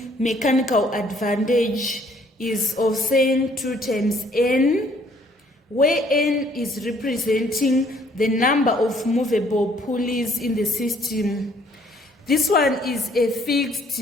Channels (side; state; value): both; normal; correlation 0.62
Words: mechanical advantage is of saying 2 times N, where N is representing the number of movable pulleys in the system. This one is a fixed